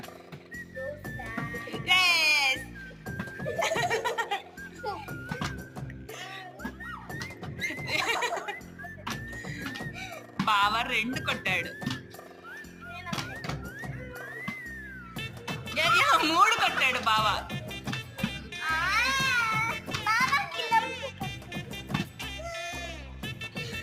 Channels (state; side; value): identical; both; correlation 1.00